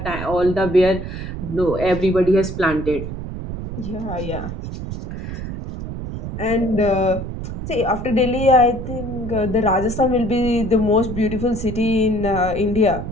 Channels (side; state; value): right; noise; rumble, 7 dB below the sound